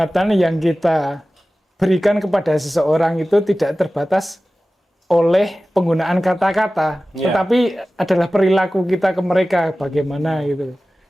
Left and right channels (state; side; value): normal; both; correlation 0.96